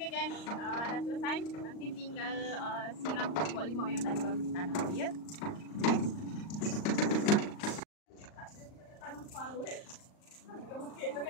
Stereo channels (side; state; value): right; late; 38 ms